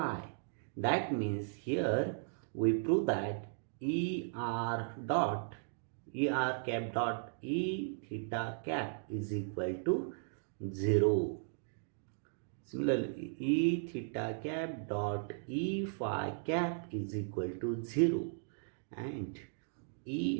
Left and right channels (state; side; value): silent; left; digital silence